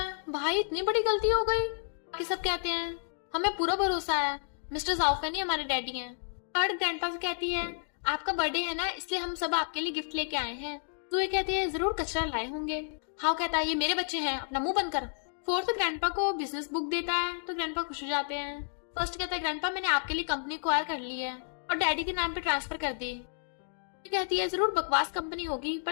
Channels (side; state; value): right; silent; digital silence